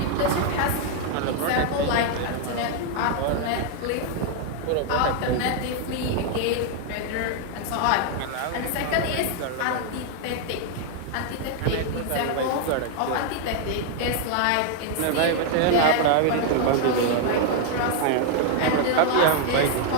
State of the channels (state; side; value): different; both; correlation 0.00